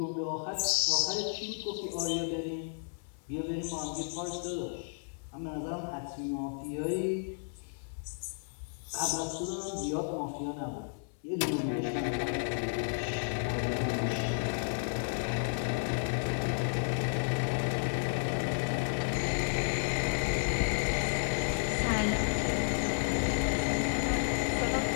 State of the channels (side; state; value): right; silent; 56 dB below the other